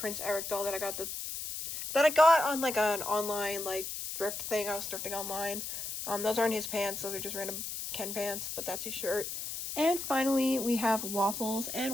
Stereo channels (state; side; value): noise; left; hiss, 6 dB below the sound